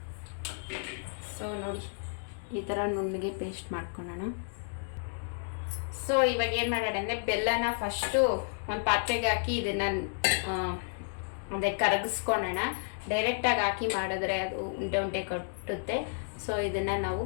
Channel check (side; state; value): right; silent; digital silence